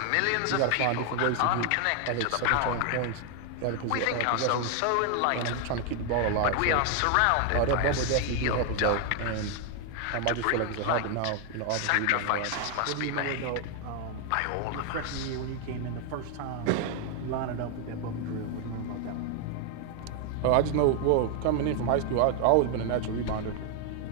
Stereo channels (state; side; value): different; both; correlation 0.00